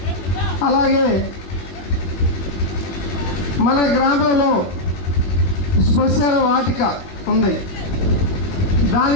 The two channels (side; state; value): right; late; 21 ms